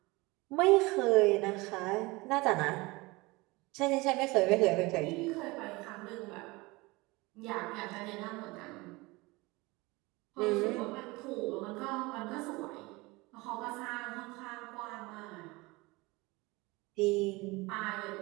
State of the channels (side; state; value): left; quieter; 23.2 dB